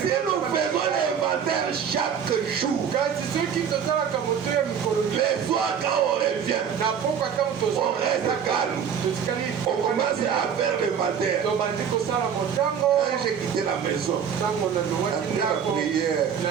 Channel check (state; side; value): quieter; left; 7.7 dB